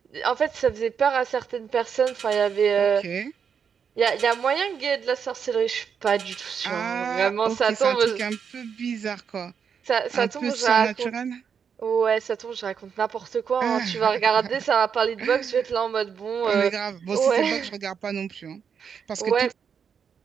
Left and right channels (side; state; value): left; quieter; 7.0 dB